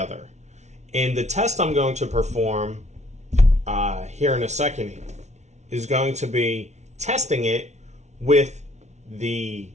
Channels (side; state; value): left; late; 0.32 ms